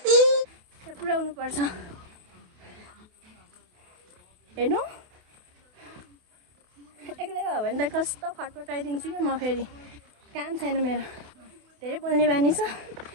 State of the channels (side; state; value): left; late; 28 ms